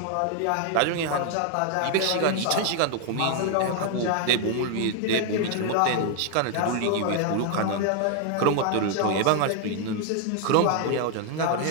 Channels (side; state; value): both; different; correlation 0.00